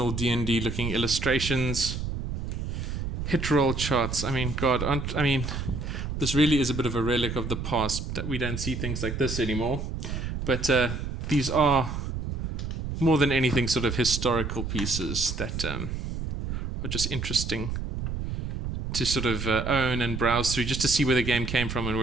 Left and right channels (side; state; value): right; noise; rumble, 5 dB below the sound